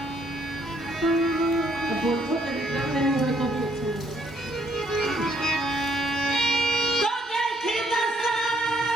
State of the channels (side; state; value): both; normal; correlation 0.68